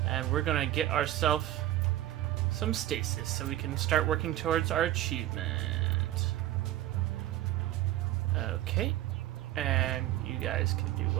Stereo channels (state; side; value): quieter; left; 14.2 dB